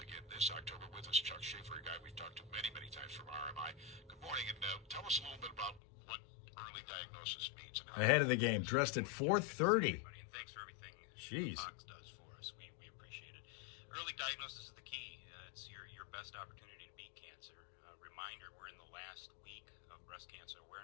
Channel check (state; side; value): drops out; right; at 5.8 s